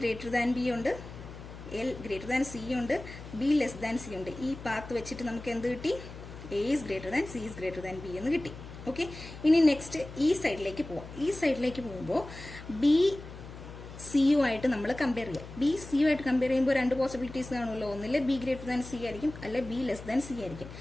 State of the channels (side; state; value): left; noise; hum, 13 dB below the sound